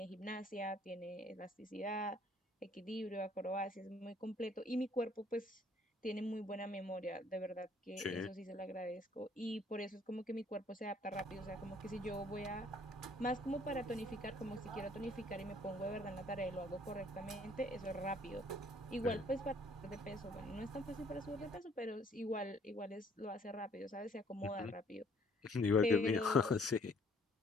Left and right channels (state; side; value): normal; both; correlation 0.61